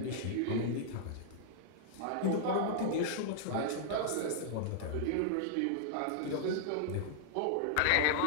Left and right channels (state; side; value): different; both; correlation -0.01